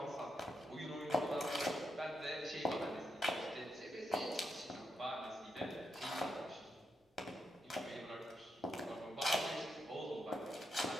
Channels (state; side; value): normal; both; correlation 0.83